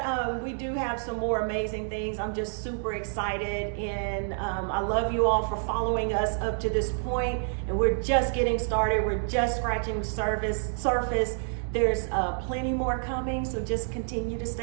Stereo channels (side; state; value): left; silent; digital silence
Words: we do have some more amazing things. I'm just super excited, and I love you all for following us up to this point. And we're just getting started. We're just scratching the surface. There's plenty more coming, so just continue to